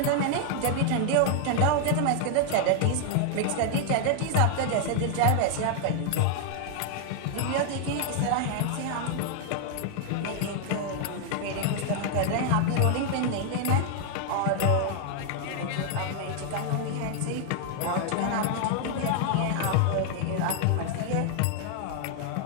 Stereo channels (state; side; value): different; both; correlation 0.00